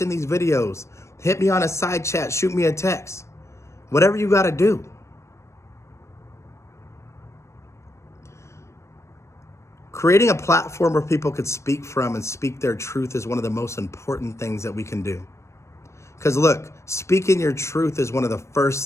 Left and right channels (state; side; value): late; right; 0.13 ms